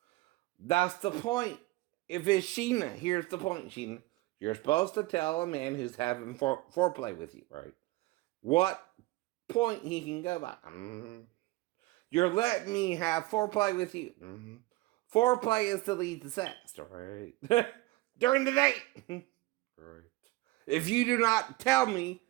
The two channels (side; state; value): left; quieter; 20.2 dB